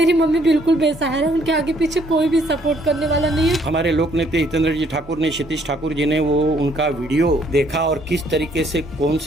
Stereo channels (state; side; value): normal; both; correlation 0.66